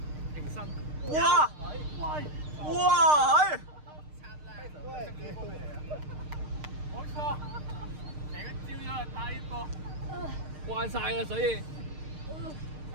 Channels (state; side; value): late; left; 6.6 ms